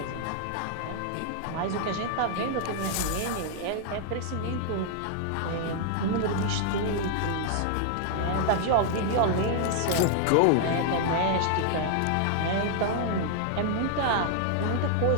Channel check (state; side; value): different; both; correlation -0.01